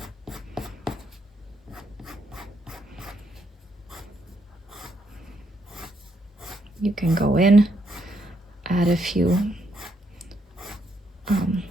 You can go in, add a few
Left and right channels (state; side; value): normal; both; correlation 0.75